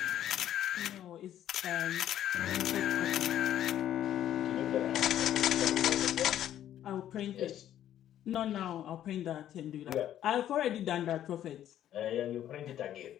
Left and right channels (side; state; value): right; quieter; 11.4 dB